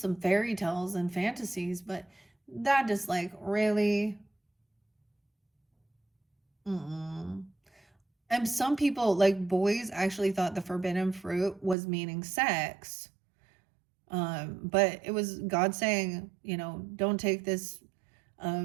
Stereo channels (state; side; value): drops out; left; at 11.8 s